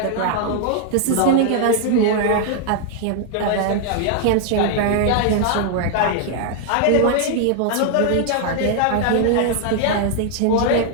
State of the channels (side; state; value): both; different; correlation -0.01